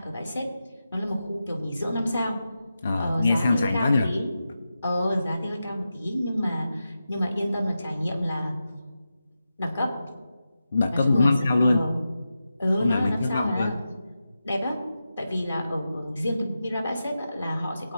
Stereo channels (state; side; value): inverted; both; correlation -0.91